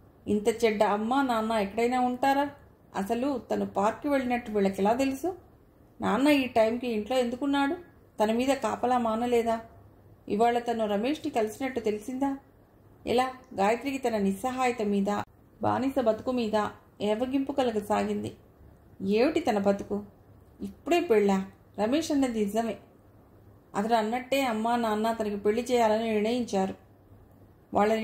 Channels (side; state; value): both; identical; correlation 1.00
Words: ఇంత చెడ్డ అమ్మ నాన్న ఎక్కడైనా ఉంటారా? అసలు తను పార్క్కి వెళ్ళినట్టు వీళ్ళకి ఎలా తెలుసు? నాన్న ఈ టైంకి ఇంట్లో ఎందుకున్నాడు? తన మీద కాపలా మానలేదా? ఇవాళ తను రమేష్ని కలిసినట్టు తెలిసిందా? ఎలా? గాయత్రికి తన నిస్సహాయత మీద, బానిస బతుకు మీద ఏవగింపు కలగసాగింది. ఏమిటి తన బతుకు? ఇప్పుడే పెళ్ళా? రమేష్ అన్నది నిజమే. అతడు అన్నట్టే అమ్మా నాన్న తనకి పెళ్లి చేయాలని నిర్ణయించారు. వాళ్ళ